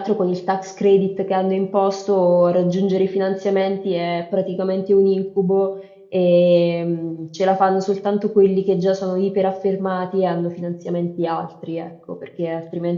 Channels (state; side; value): identical; both; correlation 1.00